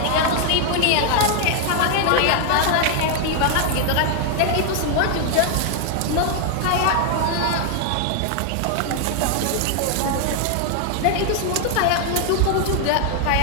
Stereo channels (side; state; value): both; different; correlation 0.00